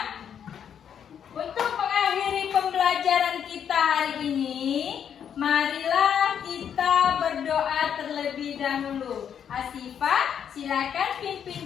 untuk mengakhiri pembelajaran kita hari ini, marilah kita berdoa terlebih dahulu. Asifah, silakan pimpin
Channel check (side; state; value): right; quieter; 8.4 dB